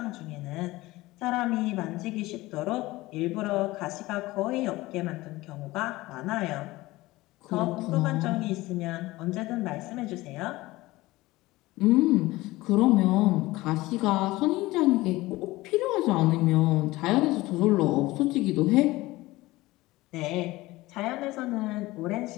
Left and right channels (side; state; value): right; quieter; 19.2 dB